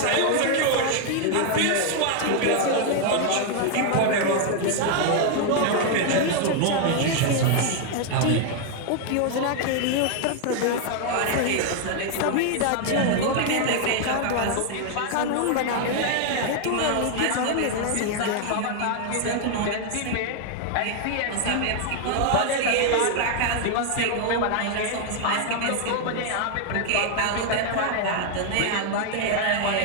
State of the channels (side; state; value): both; different; correlation 0.00